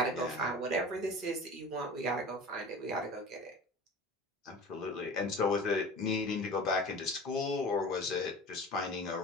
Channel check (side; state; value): both; normal; correlation 0.37